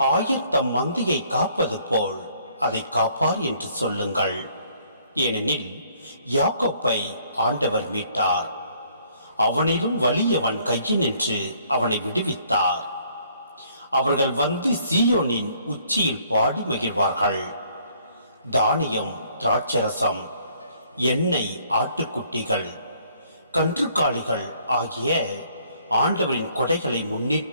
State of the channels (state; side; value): inverted; both; correlation -0.63